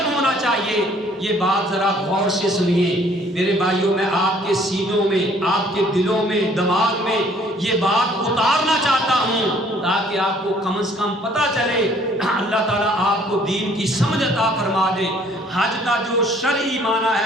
ہونا چاہیے۔ یہ بات ذرا غور سے سنیے میرے بھائیوں، میں آپ کے سینوں میں، آپ کے دلوں میں، دماغ میں یہ بات اتارنا چاہتا ہوں تاکہ آپ کو کم از کم پتہ چلے، اللہ تعالیٰ آپ کو دین کی سمجھ عطا فرما دے۔ حج کا جو شرعی معنی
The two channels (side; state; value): both; normal; correlation 0.59